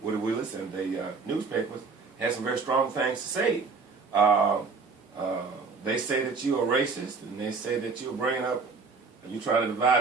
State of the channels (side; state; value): left; quieter; 4.6 dB